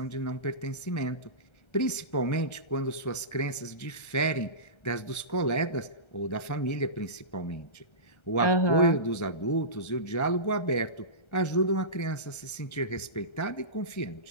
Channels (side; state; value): right; late; 1.3 ms